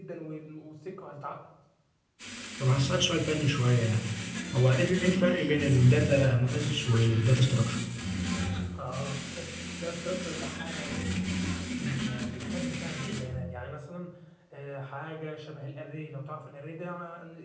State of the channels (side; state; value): both; identical; correlation 1.00